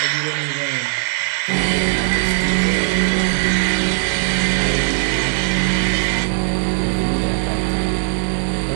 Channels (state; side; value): silent; left; digital silence